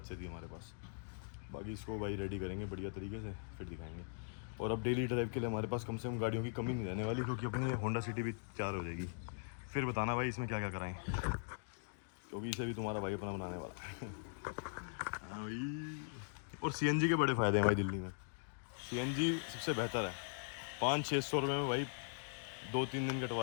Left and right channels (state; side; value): silent; right; digital silence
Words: से थी हमारे पास। बाकी इसको भाई रेडी करेंगे बढ़िया तरीके से, फिर दिखाएंगे। और अब डेली ड्राइव के लिए हमारे पास कम से कम गाड़ियों की कमी नहीं रहने वाली, क्योंकि अपनी होंडा सिटी भी तैयार हो जाएगी। फिर बताना भाई इसमें क्या क्या कराएं, क्योंकि इसे भी तुम्हारा भाई अपना बनाने वाला है। हाँ भाई। और CNG के बड़े फ़ायदे हैं भाई दिल्ली में। CNG सबसे बेहतर है, 500-600 रुपये में भाई 2-3 दिन